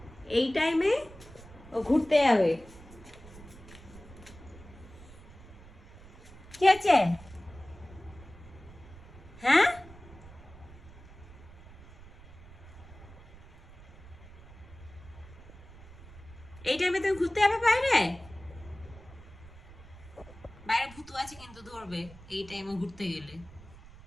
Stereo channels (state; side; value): noise; right; rumble, 19 dB below the sound